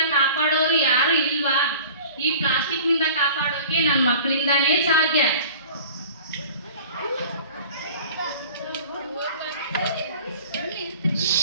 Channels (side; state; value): both; inverted; correlation -0.43